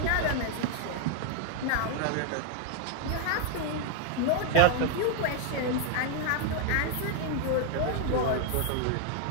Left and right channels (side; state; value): both; different; correlation -0.01